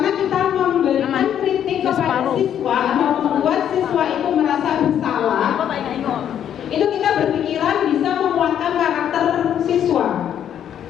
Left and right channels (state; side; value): quieter; right; 9.7 dB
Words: kita memberikan kritik kepada siswa atau membuat siswa itu merasa bersalah, itu kita berpikiran bisa menguatkan karakter siswa.